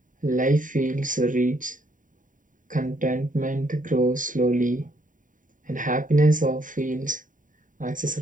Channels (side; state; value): left; late; 0.38 ms